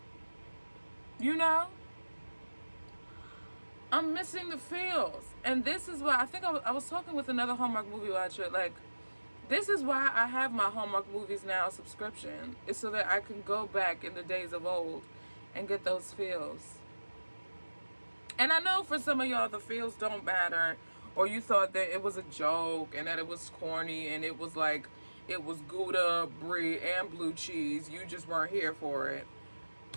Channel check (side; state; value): both; inverted; correlation -1.00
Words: You know? I'm missing the feels. And this is why I think I was talking with another Hallmark movie watcher. Like, this is why I have my Hallmark Movies Now subscription. It's so that I can go back in the days of old and get those feels. And I know for some of y'all the feels don't matter, or you thought that it was a joke and that it was corny and it was like, it was Gouda, brie, and blue cheese. You just weren't here for it.